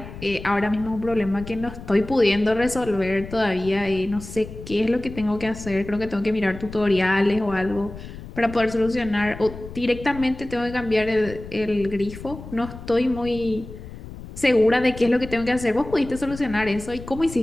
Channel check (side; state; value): left; noise; rumble, 13 dB below the sound